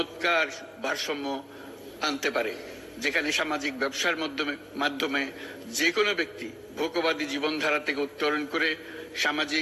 ভারসাম্য আনতে পারে, যেখানে সামাজিক ব্যবসার মাধ্যমে যে কোনো ব্যক্তি ভোগবাদী জীবনধারা থেকে উত্তরণ করে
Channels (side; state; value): both; identical; correlation 1.00